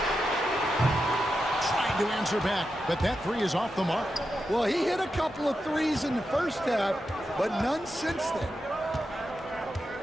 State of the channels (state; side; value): normal; both; correlation 0.88